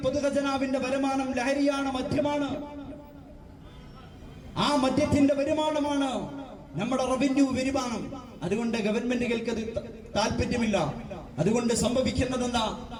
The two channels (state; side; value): identical; both; correlation 1.00